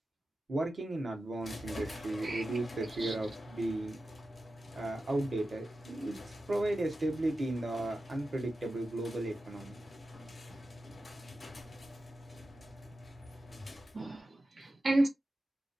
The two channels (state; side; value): normal; both; correlation 0.93